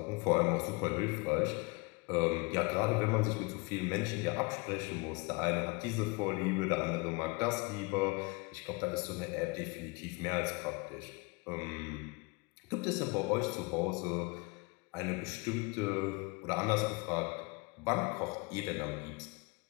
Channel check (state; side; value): quieter; right; 27.8 dB